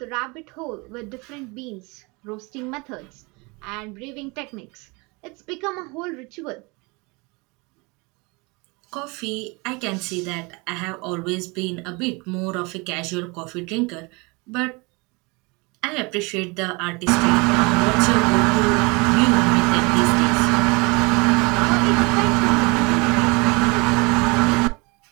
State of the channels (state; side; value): quieter; left; 27.7 dB